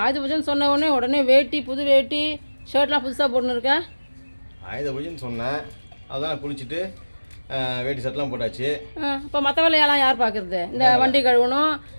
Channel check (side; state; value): both; inverted; correlation -1.00